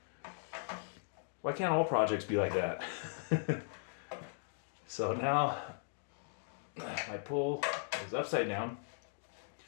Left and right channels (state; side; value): silent; right; digital silence